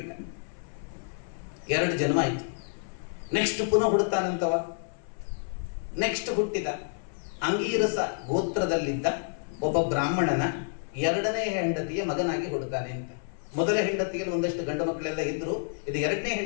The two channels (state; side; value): silent; right; 59 dB below the other